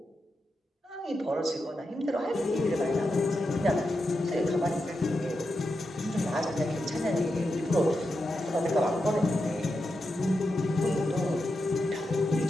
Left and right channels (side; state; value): both; normal; correlation 0.88